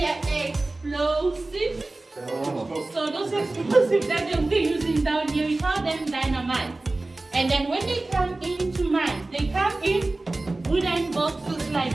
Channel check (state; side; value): quieter; left; 3.0 dB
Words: the explosives. So those explosives that they'll be using down here, we call them dynamite. And then when they come into mine, they come in wooden boxes